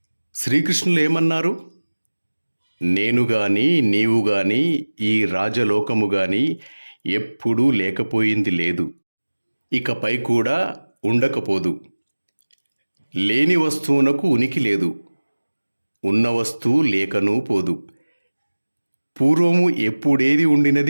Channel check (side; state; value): both; inverted; correlation -1.00